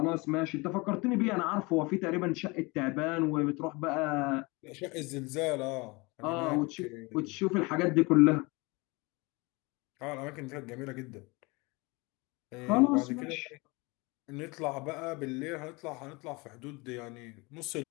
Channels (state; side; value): quieter; right; 25.9 dB